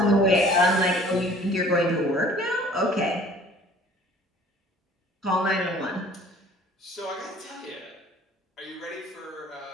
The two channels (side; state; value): both; normal; correlation 0.51